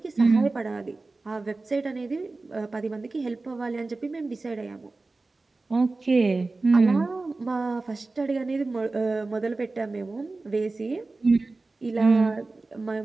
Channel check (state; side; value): quieter; left; 3.4 dB